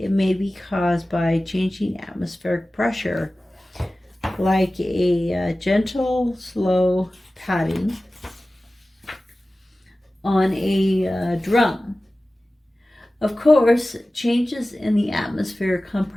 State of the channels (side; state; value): both; normal; correlation 0.96